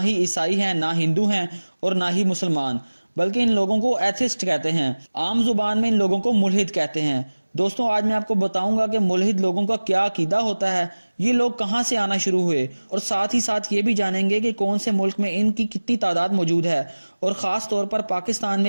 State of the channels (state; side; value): inverted; both; correlation -1.00